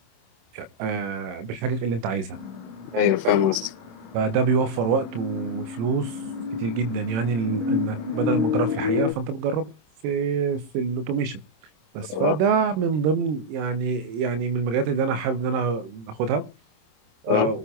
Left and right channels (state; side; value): late; left; 26 ms